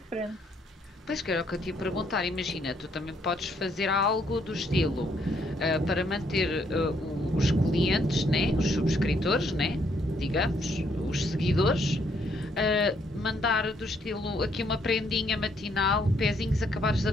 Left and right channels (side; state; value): both; normal; correlation 0.70